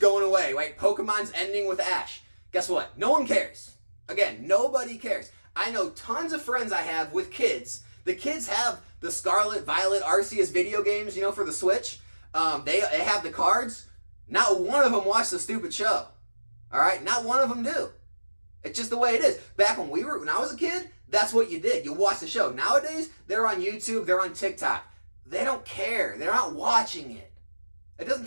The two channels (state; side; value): inverted; both; correlation -1.00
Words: away, right? Pokemon's ending with Ash. Guess what? No one cares. Again, nobody cares. I know tons of friends I have with kids. The kids have the Scarlet, Violet, Arceus video games, for the Switch. They have the cards. Not one of them watched the stupid show. All right? Not one of them do. It's just the way it is. Back when I was a kid, that's what you did. You watched the show. Nowadays, they're on YouTube, they're on TikTok. They don't care. They're not watching it. It doesn't